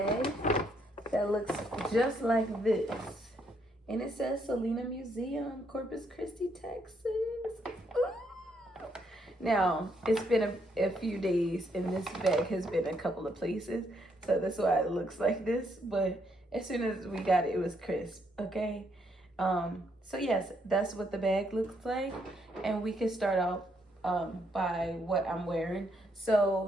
that looks just like this. And it says Selena Museum, Corpus Christi, Texas. Ooh. Now, it's been a few days and this bag has been a couple of places. So that's why it looks like this. But as soon as we got it, it was crisp, okay? So yes, that's what the bag looks like. And we can start out by what I'm wearing.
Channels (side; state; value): both; normal; correlation 0.74